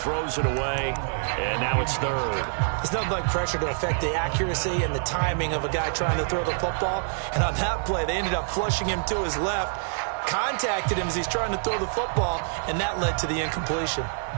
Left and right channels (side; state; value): left; silent; digital silence